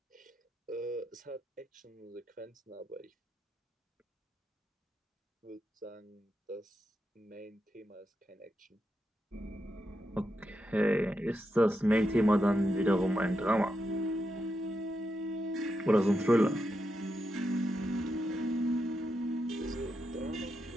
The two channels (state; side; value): normal; both; correlation 0.85